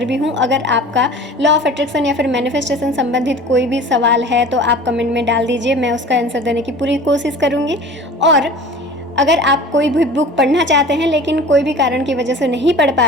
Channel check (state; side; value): normal; both; correlation 0.41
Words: भी हूँ। अगर आपका लॉ ऑफ अट्रैक्शन या फिर मैनिफेस्टेशन संबंधित कोई भी सवाल है तो आप कमेंट में डाल दीजिए, मैं उसका आंसर देने की पूरी कोशिश करूँगी। और अगर आप कोई भी बुक पढ़ना चाहते हैं लेकिन कोई भी कारण की वजह से नहीं पढ़